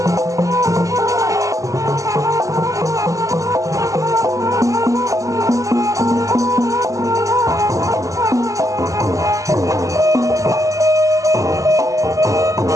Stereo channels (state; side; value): late; left; 0.16 ms